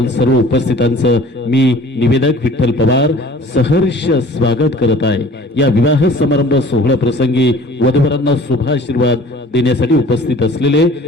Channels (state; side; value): normal; both; correlation 0.48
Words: सर्व उपस्थितांचं मी निवेदक विठ्ठल पवार सहर्ष स्वागत करत आहे. या विवाह समारंभ सोहळ्या प्रसंगी वधूवरांना शुभाशीर्वाद देण्यासाठी उपस्थित असलेले